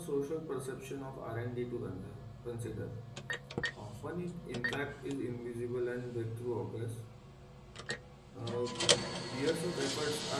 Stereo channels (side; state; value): both; identical; correlation 1.00